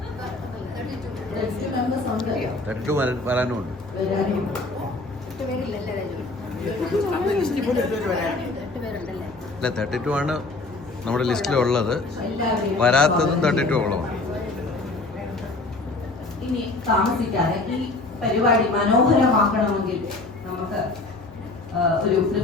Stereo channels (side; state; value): right; quieter; 3.2 dB